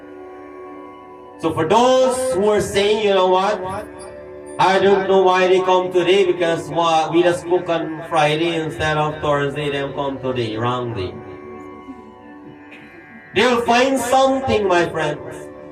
So for those who are saying, you know what, I don't know why they come today because we just spoke on Friday instead of Thursday, they come today, wrongly. They will find something, my friends,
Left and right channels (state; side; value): identical; both; correlation 1.00